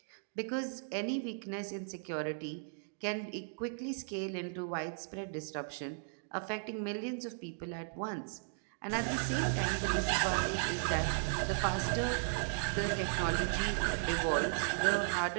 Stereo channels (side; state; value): left; silent; digital silence